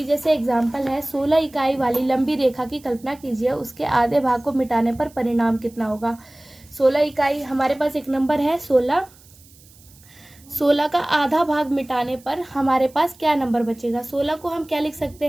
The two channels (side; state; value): right; noise; hiss, 26 dB below the sound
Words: जैसे एग्जांपल है, 16 इकाई वाली लंबी रेखा की कल्पना कीजिए, उसके आधे भाग को मिटाने पर परिणाम कितना होगा। 16 इकाई, हमारे पास एक नंबर है 16। 16 का आधा भाग मिटाने पर हमारे पास क्या नंबर बचेगा। 16 को हम क्या लिख सकते